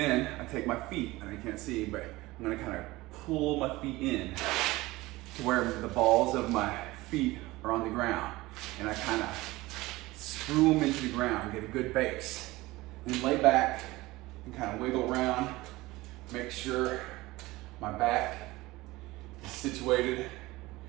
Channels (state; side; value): quieter; left; 19.7 dB